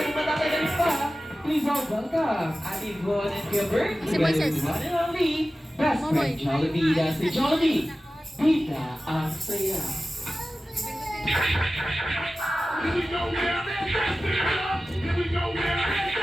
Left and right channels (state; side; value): normal; both; correlation 0.95